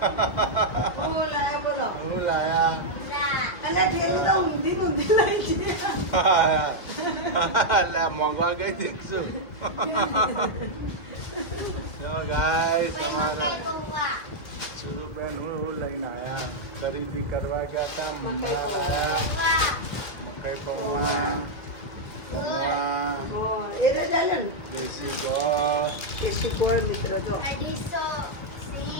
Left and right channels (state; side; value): late; right; 1.9 ms